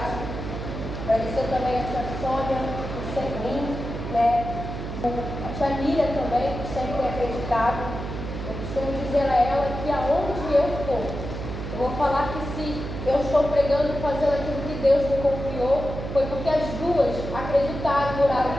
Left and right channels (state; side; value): noise; right; hum, 6 dB below the sound